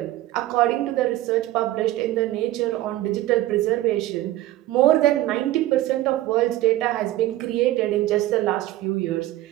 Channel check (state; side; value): quieter; left; 15.4 dB